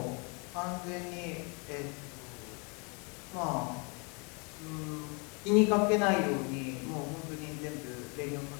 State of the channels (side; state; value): right; quieter; 33.2 dB